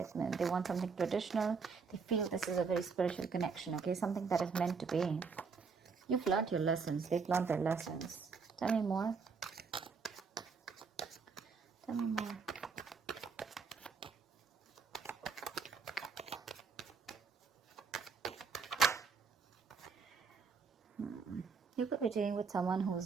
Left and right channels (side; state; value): left; quieter; 5.3 dB